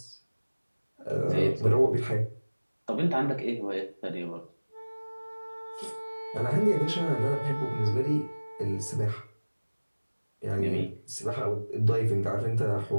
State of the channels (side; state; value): both; inverted; correlation -1.00